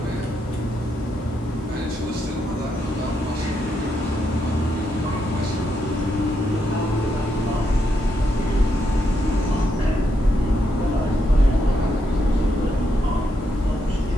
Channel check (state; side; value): normal; both; correlation 0.80